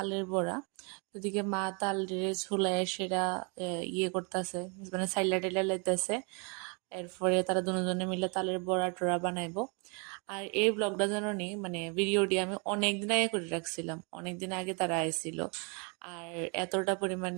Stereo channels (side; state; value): left; quieter; 34.5 dB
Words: বড়া। এদিকে মা তাল ঝুলায় সেটা ইয়ে করতেছে, মানে সাইলা টেলা লাইতেছে। এরপরে তারা দুজনে মিলে তালের বড়া টড়া বানাইবো। আর এই ব্লগটা জানি মানে ভিডিওটি আমি অনেকদিন আগে করে রাখছিলাম, অনেকদিন আগে তারা আইছিল। আর এতটা